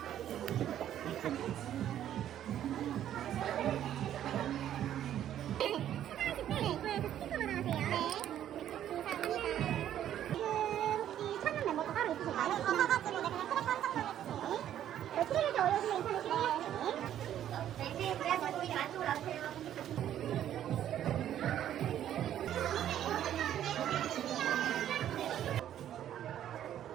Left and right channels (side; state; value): left; quieter; 11.1 dB